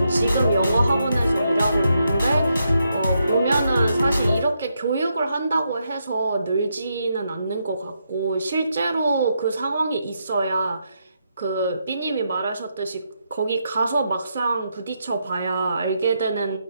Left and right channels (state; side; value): inverted; both; correlation -0.81